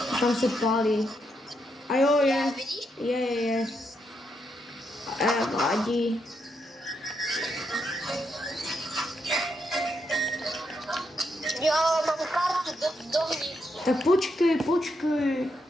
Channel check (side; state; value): both; normal; correlation 0.80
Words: Tam se pálí. A jo, je. Vidíš? Je. Vadí. Jo, mám kartu dovnitř. Tak počkej.